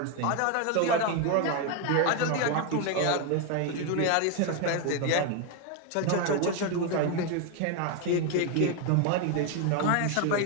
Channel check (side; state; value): both; different; correlation 0.01